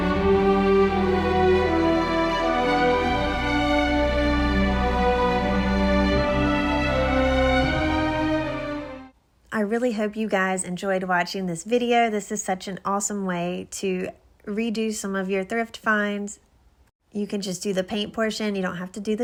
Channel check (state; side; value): identical; both; correlation 1.00